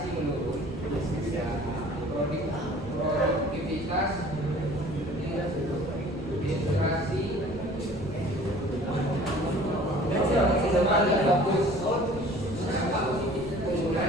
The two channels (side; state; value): right; noise; rumble, 14 dB below the sound